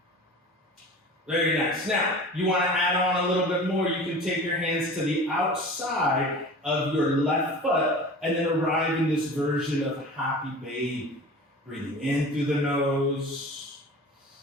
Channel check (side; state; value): both; normal; correlation 0.38